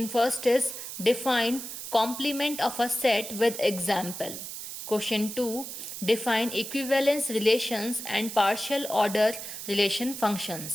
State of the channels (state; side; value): noise; right; hiss, 9 dB below the sound